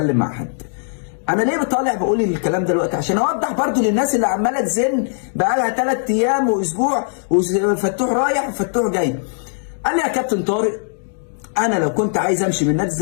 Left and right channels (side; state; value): right; silent; digital silence